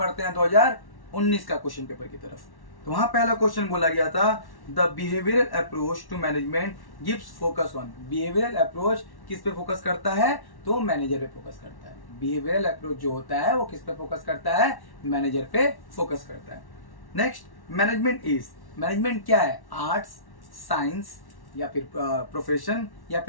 हैं 2019 का क्वेश्चन पेपर की तरफ। तो वहां पहला क्वेश्चन बोला गया था, the behavioral approach to management gives focus on. Behavioral approach किस पे फोकस करता है? तो मैनेजर पे फोकस करता है। बिहेवियरल अप्रोच जो होता है वो किस पे फोकस करता है? मैनेजर पे फोकस करता है। नेक्स्ट, मैनेजमेंट इज, मैनेजमेंट क्या है? आर्ट्स, साइंस, या फिर प्रोफेशन, या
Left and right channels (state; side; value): late; right; 1.1 ms